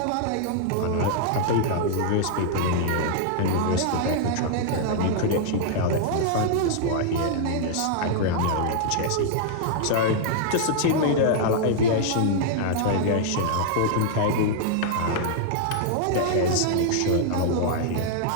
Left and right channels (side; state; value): both; different; correlation -0.01